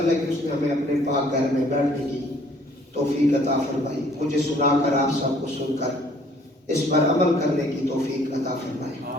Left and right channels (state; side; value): normal; both; correlation 0.59